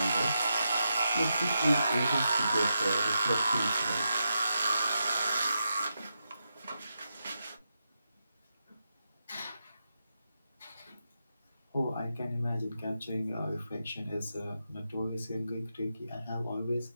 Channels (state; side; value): inverted; both; correlation -0.86